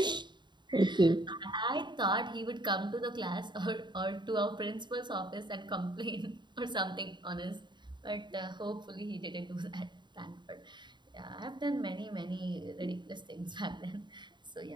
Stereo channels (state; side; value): late; left; 0.22 ms